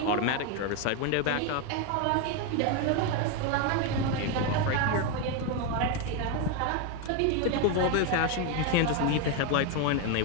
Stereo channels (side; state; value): both; different; correlation 0.02